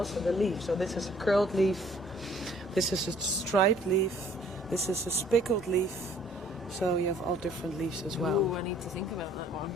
the leaf. So this is a curled leaf. This is a striped leaf. This is a spickled leaf. So you have all different leaves as well. Oh, I need to think about that one.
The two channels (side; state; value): both; normal; correlation 0.58